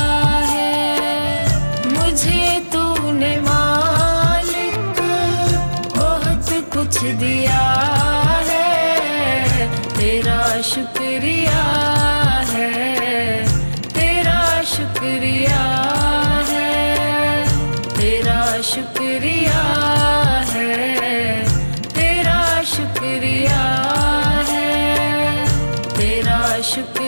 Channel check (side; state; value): both; inverted; correlation -1.00